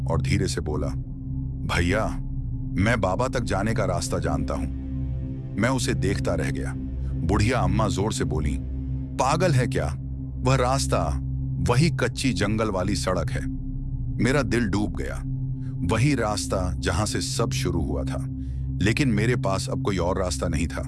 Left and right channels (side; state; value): both; identical; correlation 1.00